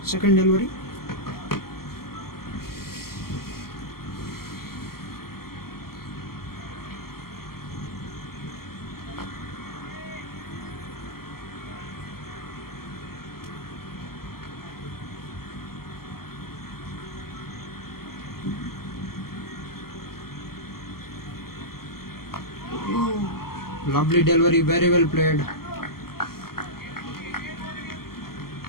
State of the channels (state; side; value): late; right; 0.93 ms